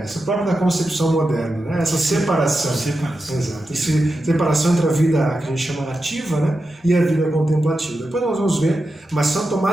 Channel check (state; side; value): normal; both; correlation 0.90